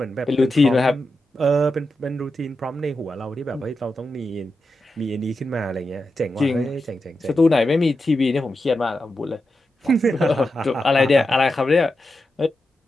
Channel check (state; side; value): normal; both; correlation 0.89